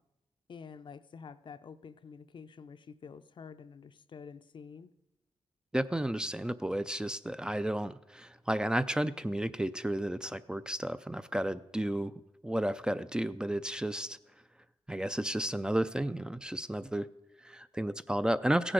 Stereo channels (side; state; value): both; normal; correlation 0.92